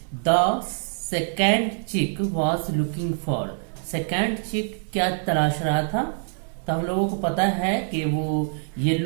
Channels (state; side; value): silent; left; digital silence